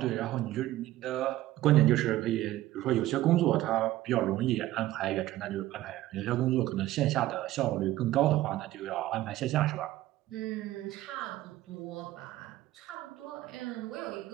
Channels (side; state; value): left; quieter; 15.4 dB